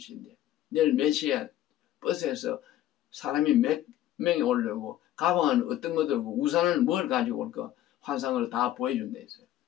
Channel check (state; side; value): quieter; right; 12.9 dB